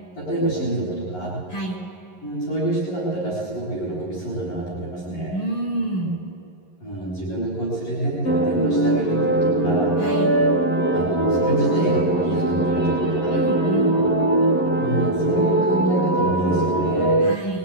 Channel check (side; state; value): right; late; 11 ms